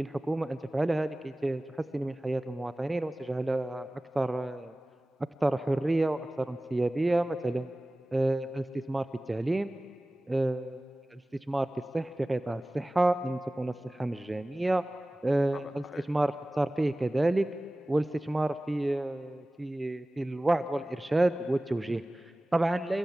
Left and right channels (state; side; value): normal; both; correlation 0.98